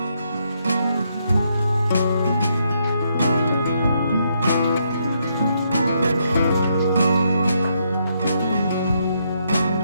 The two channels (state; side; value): inverted; both; correlation -0.76